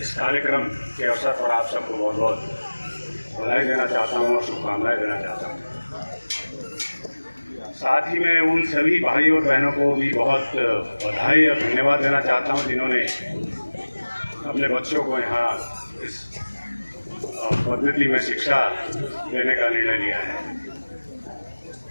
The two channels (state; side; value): inverted; both; correlation -1.00